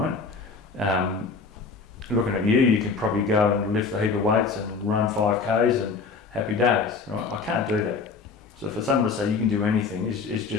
Looking at you can probably go and lift a heap of weights and run 5Ks and happy days. Right. I can't do that. So for someone to say you can do anything is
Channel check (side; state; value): right; quieter; 4.7 dB